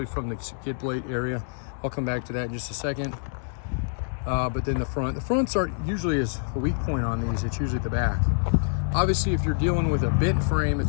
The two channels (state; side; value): silent; right; digital silence